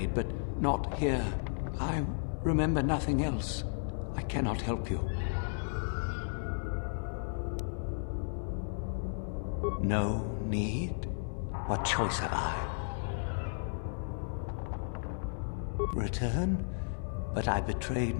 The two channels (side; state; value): right; silent; digital silence